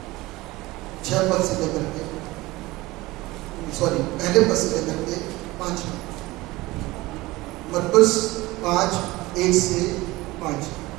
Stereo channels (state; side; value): quieter; left; 19.9 dB